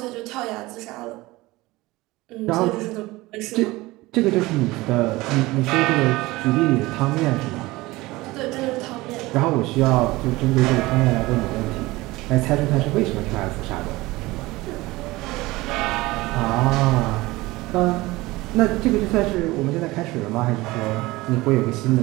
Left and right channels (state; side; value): quieter; left; 20.2 dB